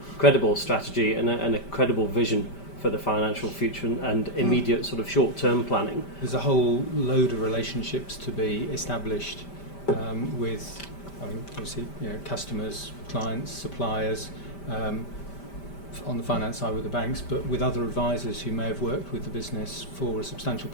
strategy and a credible vision for the financial future and immediate sort of short-term planning. There's a whole load of relationships to be established with, obviously, customers, clients, suppliers, on the finance side with the banks, but with other advisors who may have worked with the business for a substantial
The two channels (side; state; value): right; late; 5.1 ms